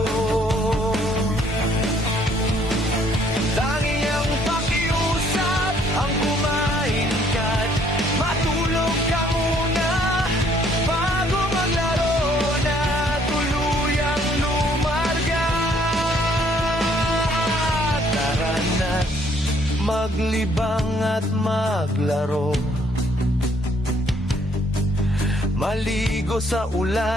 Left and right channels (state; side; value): normal; both; correlation 0.64